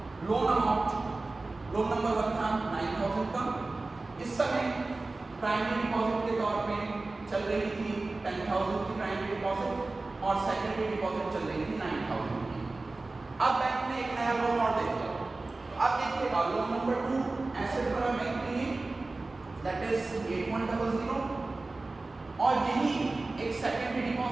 लोन अमाउंट लोन नंबर 1 था 9,000 का। इस समय प्राइमरी डिपॉजिट के तौर पे चल रही थी 10,000 की प्राइमरी डिपॉजिट और सेकेंडरी डिपॉजिट चल रही थी 9,000 की। अब बैंक ने एक नया लोन और दे दिया। तो अब देखिएगा लोन नंबर 2 एसेट पर बैंक ने दैट इज 8100 और यही एक सेकेंडरी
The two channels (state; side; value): quieter; left; 3.3 dB